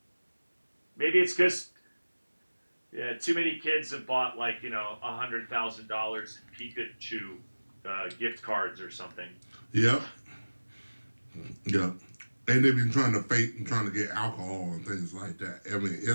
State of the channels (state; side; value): inverted; both; correlation -1.00